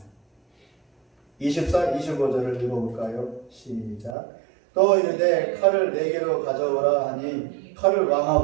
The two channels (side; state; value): left; drops out; at 4.2 s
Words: 24, 25절을 읽어볼까요? 시작. 또 이르되 칼을 4개로 가져오라 하니 칼을 왕